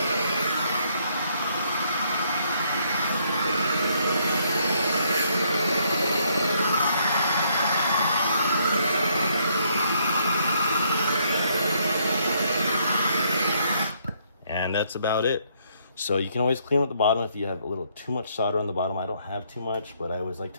And that's about it. So you can always clean up the bottom if you have a little too much solder on the bottom. I don't have too much, but I always like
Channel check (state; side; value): inverted; both; correlation -0.70